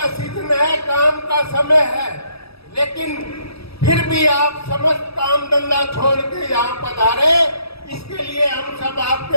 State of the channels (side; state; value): right; late; 0.77 ms